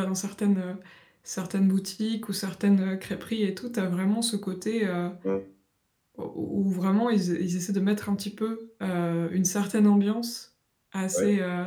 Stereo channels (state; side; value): identical; both; correlation 1.00